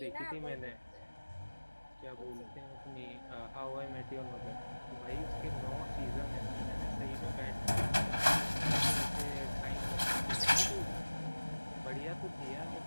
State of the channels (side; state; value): both; inverted; correlation -1.00